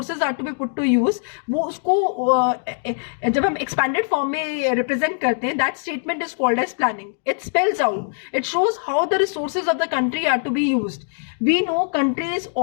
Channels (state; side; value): silent; right; digital silence